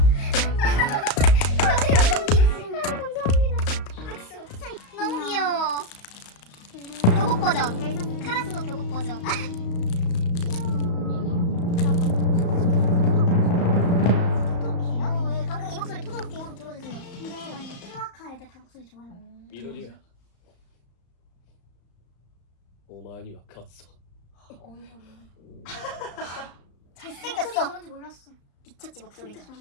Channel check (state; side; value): late; right; 35 ms